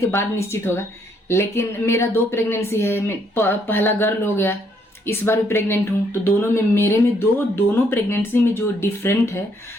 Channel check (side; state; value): both; normal; correlation 0.70